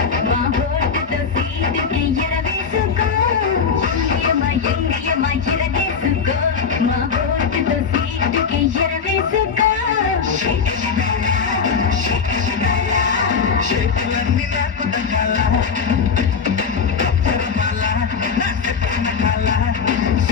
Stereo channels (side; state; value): right; quieter; 5.9 dB